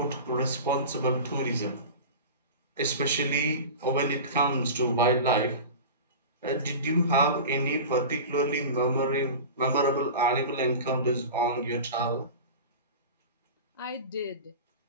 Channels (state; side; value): inverted; both; correlation -0.32